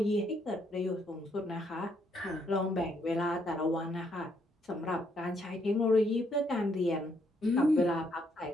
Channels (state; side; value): normal; both; correlation 0.73